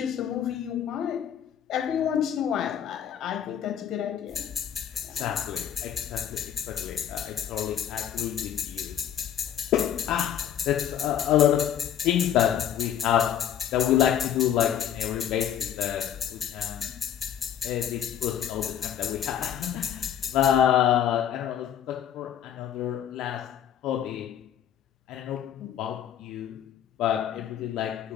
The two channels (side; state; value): right; quieter; 9.8 dB